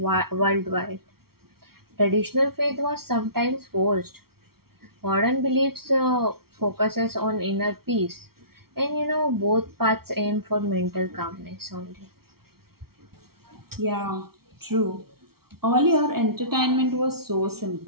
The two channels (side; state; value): left; late; 0.94 ms